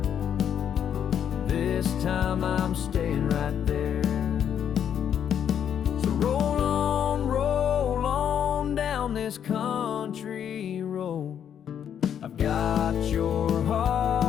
this time I'm staying right there. So roll on down this country road. I've got your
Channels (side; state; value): right; quieter; 8.9 dB